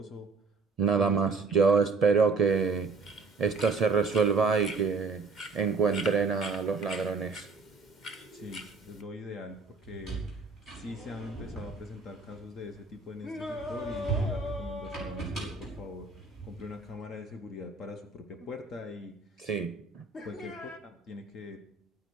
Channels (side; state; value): left; quieter; 4.3 dB